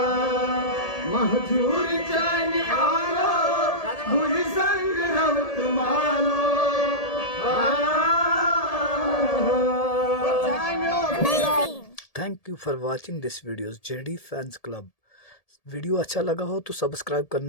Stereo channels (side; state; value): right; late; 1.7 ms